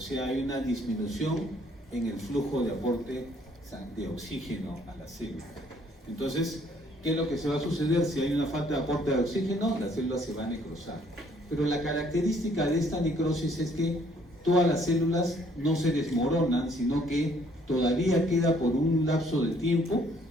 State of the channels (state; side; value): normal; both; correlation 0.63